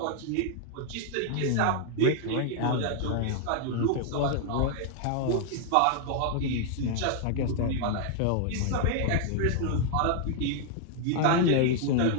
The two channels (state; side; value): different; both; correlation 0.00